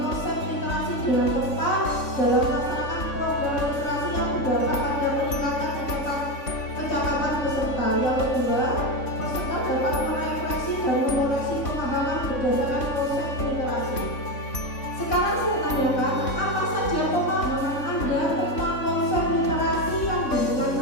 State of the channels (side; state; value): right; late; 3.5 ms